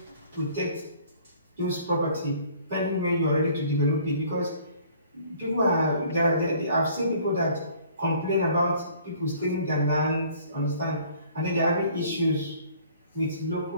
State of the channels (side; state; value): both; inverted; correlation -0.55